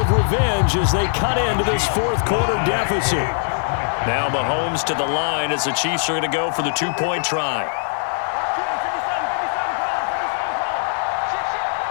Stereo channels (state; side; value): silent; right; digital silence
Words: revenge as they cut into this 4th quarter deficit. Now Mahomes to the line as the Chiefs are going to go for the 2-point try.